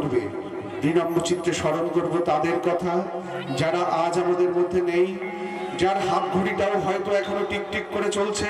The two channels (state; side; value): identical; both; correlation 1.00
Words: विनम्र चित्ते स्मरण करब तादेर कथा जारा आज आमादेर मध्य नेই जार हाथ घड़ीटाও হয়তো এখনো টিকটিক করে চলছে